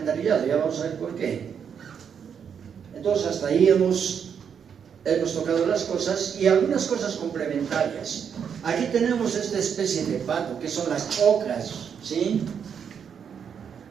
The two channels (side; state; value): left; quieter; 7.4 dB